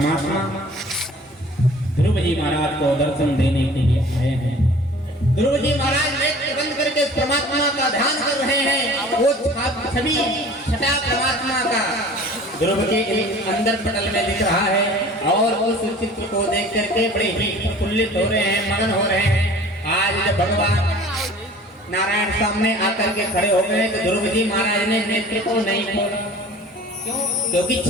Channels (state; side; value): normal; both; correlation 0.46